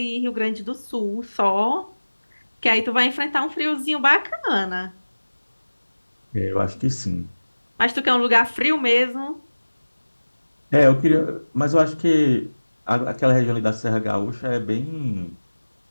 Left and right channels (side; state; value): both; inverted; correlation -1.00